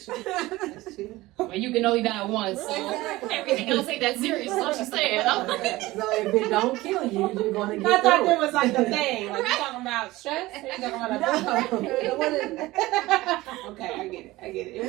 true. Well, you can only die once, so everything else ain't that serious. That's what she's saying. So if it don't kill you, you're going to get I thought there was like the thing. Like, you talking about stress? Or you talking about Okay, I get it. It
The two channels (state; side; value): quieter; left; 18.7 dB